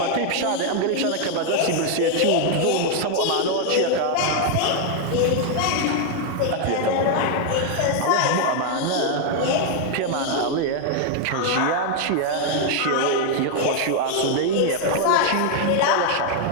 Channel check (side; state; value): both; different; correlation 0.00